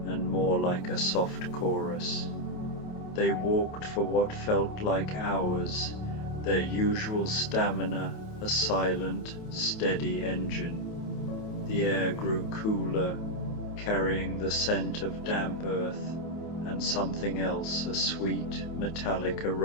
and more like a soft chorus. They walked for what felt like hours, their usual stamina a silent, steady engine. The air grew cooler, carrying the scent of damp earth and something else, a sweet, metallic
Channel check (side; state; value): right; late; 28 ms